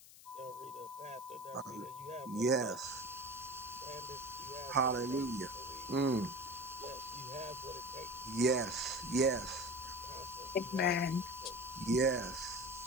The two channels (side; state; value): left; noise; hiss, 19 dB below the sound